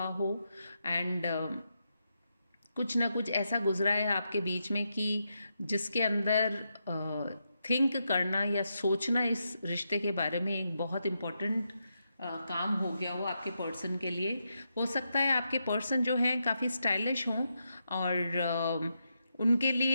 हो। एंड कुछ ना कुछ ऐसा गुजरा है आपके बीच में कि जिसके अंदर थिंक करना या सोचना इस रिश्ते के बारे में एक बहुत इम्पॉर्टेंट काम हो गया हो आपके पर्सन के लिए। हो सकता है आपके पर्सन जो हैं काफ़ी स्टाइलिश हों और उनके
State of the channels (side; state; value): both; inverted; correlation -0.84